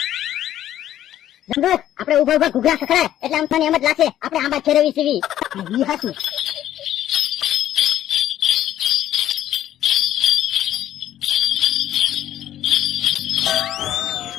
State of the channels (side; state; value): right; quieter; 12.1 dB